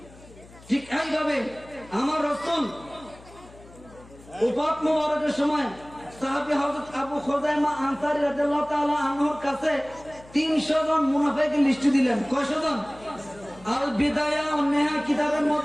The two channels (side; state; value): left; noise; hum, 22 dB below the sound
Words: ঠিক এইভাবে আমার রাসূল উফাত মুবারকের সময় সাহাবী হযরত আবু খুযাইমা আনসারী রাদিয়াল্লাহু তাআলা আনহুর কাছে 300 জন মুনাফিকের লিস্ট দিলেন। কয়শো জন? আল বিদায়া ও নেহা কিতাবের